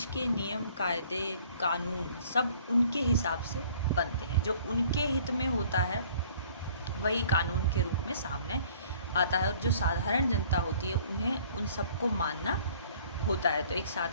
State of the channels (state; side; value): inverted; both; correlation -0.54